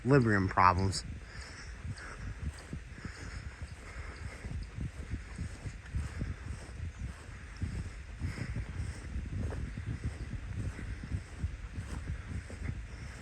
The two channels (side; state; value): both; identical; correlation 1.00